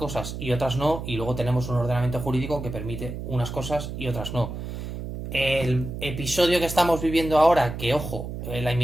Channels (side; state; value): right; noise; hum, 7 dB below the sound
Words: y otras no, y luego tenemos un ordenamiento jurídico que permite unas cosas y otras no. El episodio que estamos viviendo ahora, que ojo, la